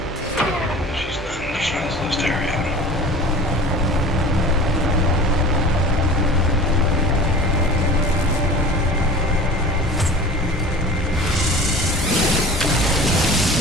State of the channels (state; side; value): normal; both; correlation 0.39